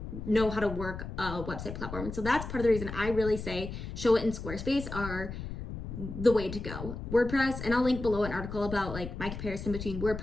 know how to work a website platform. And so that's part of the reason I really say Showit and Squarespace are the way to go. WordPress, and I'll link below an article about like my comparison between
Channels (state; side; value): noise; left; rumble, 8 dB below the sound